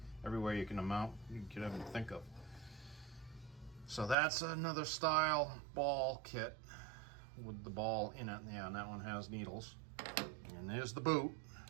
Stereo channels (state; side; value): drops out; left; at 4.2 s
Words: everywhere you can ever think of. So that's another style ball kit with the ball in it. Yeah, and that one has needles. And there's the boot